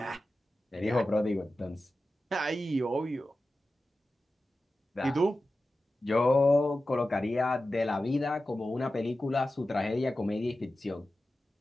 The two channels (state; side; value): normal; both; correlation 0.94